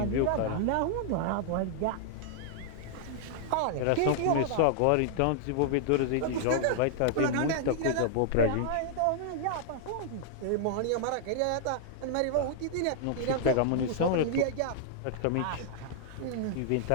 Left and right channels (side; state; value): both; different; correlation -0.01